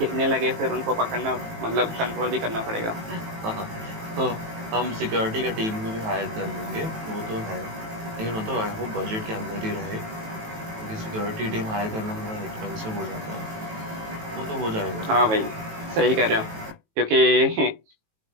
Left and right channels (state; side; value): late; left; 18 ms